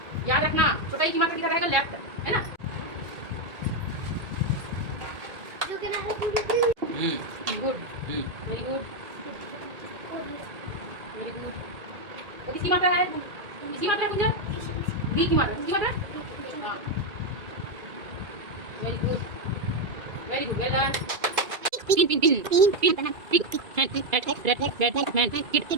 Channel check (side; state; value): left; late; 2.3 ms